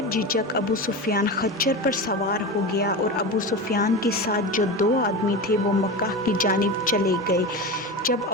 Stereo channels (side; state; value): both; normal; correlation 0.24